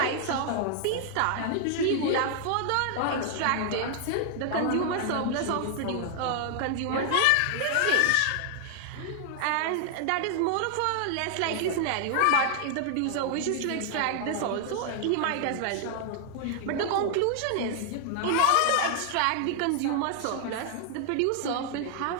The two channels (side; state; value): both; different; correlation 0.00